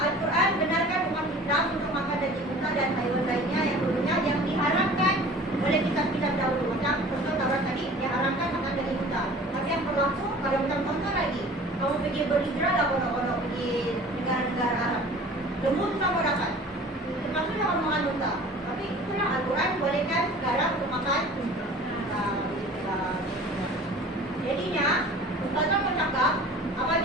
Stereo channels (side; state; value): both; normal; correlation 0.45